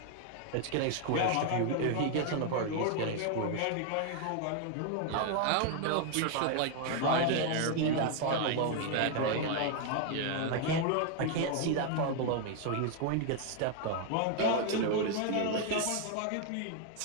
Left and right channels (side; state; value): both; different; correlation 0.00